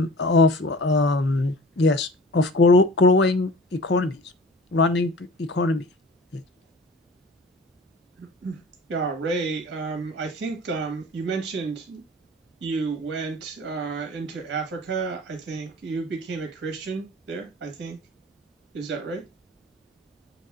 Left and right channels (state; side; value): normal; both; correlation 0.42